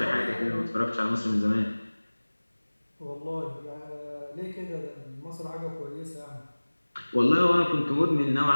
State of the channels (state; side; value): inverted; both; correlation -1.00